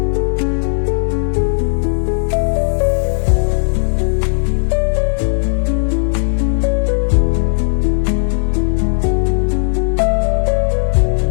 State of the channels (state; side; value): silent; right; digital silence